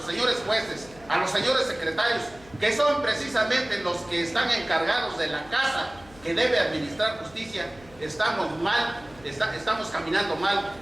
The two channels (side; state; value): left; noise; hum, 23 dB below the sound